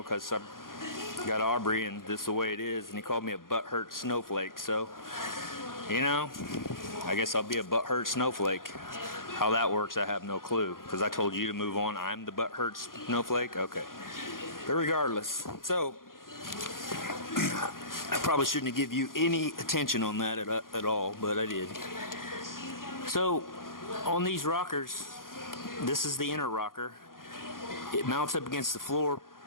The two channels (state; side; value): late; right; 0.91 ms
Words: because I've got Aubrey and this is the way it is. And he called me a butthurt snowflake. So, you know, I guess I'll be a butthurt snowflake. How that works, I have no clue, because I told you to move on. I'm the butthurt snowflake? Okay. But regardless, so I probably shouldn't have given you any attention on that at all, but I did. So on these rockers, this is the inner rocker. It mounts up against the floor